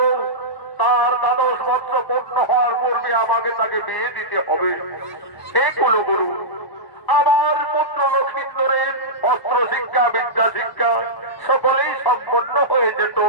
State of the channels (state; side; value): late; right; 1.0 ms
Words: তার 12 বৎসর পূর্ণ হওয়ার পূর্বে আমাকে তাকে বিয়ে দিতে হবে। হে কুলগুরু, আমার পুত্র নক্ষিন্দরের অস্ত্র শিক্ষা বিদ্যা শিক্ষা সকলেই সম্পন্ন হয়ে যেত